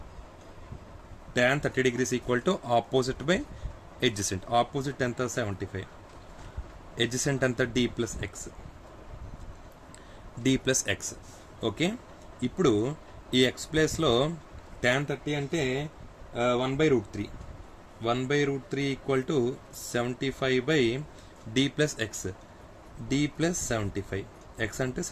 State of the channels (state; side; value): identical; both; correlation 1.00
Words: degrees equal to opposite by adjacent. Opposite ఎంత? 75. ఎడ్జసెంట్ ఎంత? D plus X. ఓకే, ఇప్పుడు ఈ ఎక్స్ ప్లేస్లో tan 30 అంటే 1/√3. 1/√3 equal to 75 by D plus X. D plus 75, X అంటే